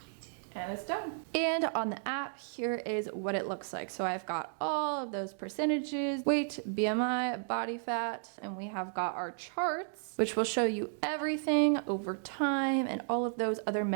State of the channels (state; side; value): silent; left; digital silence